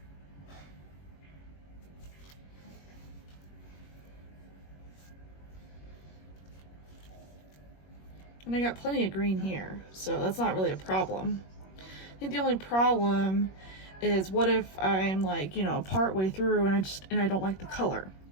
And I got plenty of green here, so that's not really a problem. I think the only problem is what if I'm like, you know, part way through and I don't like the color,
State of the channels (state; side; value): late; right; 21 ms